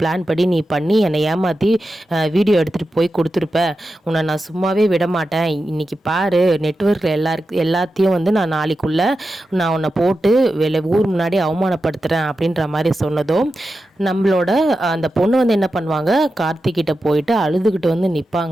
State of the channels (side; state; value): both; normal; correlation 0.91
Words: படி நீ பண்ணி என்னை ஏமாற்றி வீடியோ எடுத்துகிட்டு போய் கொடுத்துருப்ப. உன்னை நான் சும்மாவே விட மாட்டேன். இன்றைக்கி பாரு, நெட்வொர்க்கில் எல்லாத்தையும் நான் நாளைக்குள்ளே நான் உன்னை போட்டு ஊர் முன்னாடி அவமானப்படுத்துகிறேன் அப்படின்ற மாதிரி சொன்னதும் நம்மளோட அந்த பொண்ணு என்ன பண்ணுவாங்க, கார்த்திகிட்ட போயிட்டு அழுதுகிட்டு